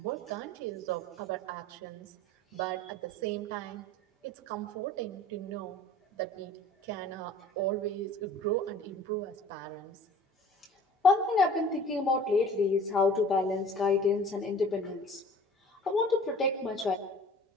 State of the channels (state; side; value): normal; both; correlation 0.46